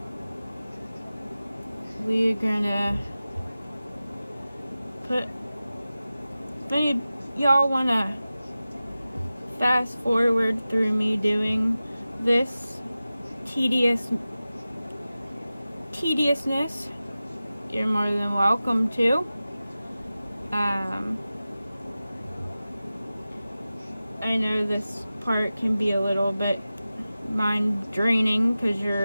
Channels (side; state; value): both; inverted; correlation -0.95